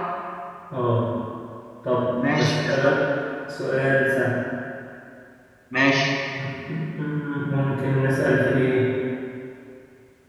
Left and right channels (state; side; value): identical; both; correlation 1.00